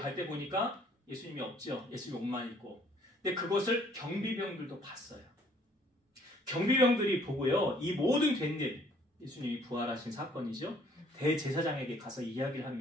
때 보니까 예수님이 없죠. 예수님 옷만 입고. 근데 그것을 경비병들도 봤어요. 경비병들이 보고요. 이 모든 된 일, 예수님이 부활하신 사건이죠. 대제사장에게 가서 이야기를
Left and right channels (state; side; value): normal; both; correlation 0.60